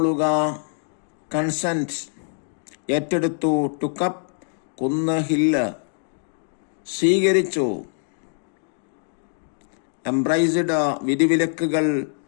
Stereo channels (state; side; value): silent; right; 58 dB below the other